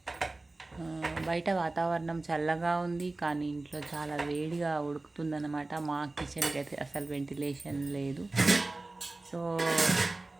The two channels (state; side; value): quieter; left; 3.1 dB